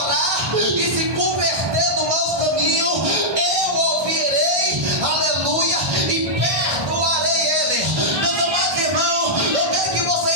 e se converter do mau caminho, eu ouvirei, aleluia, e perdoarei ele. Meus amados irmãos, eu quero que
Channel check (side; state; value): left; late; 1.6 ms